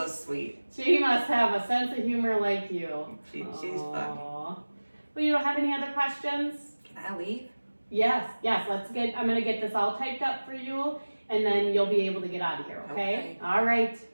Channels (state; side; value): inverted; both; correlation -1.00